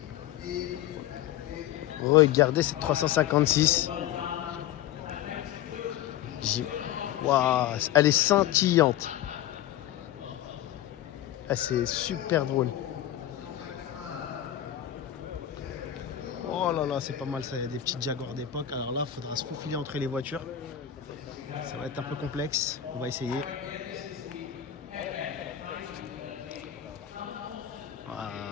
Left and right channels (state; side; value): quieter; right; 11.7 dB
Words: Regardez cette 356. Waouh, elle est scintillante. Ah, c'est super drôle. Oh là là, c'est pas mal ça. Il y a des petites Jaguars d'époque. Alors là, il faudra se faufiler entre les voitures. Ça va être un peu complexe. On va essayer. Voilà,